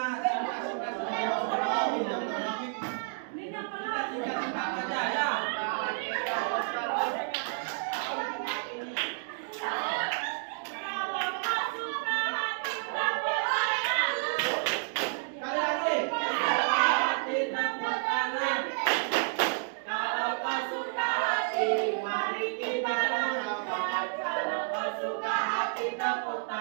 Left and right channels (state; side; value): silent; left; digital silence